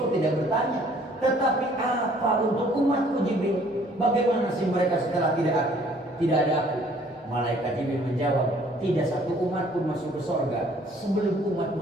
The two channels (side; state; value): both; normal; correlation 0.58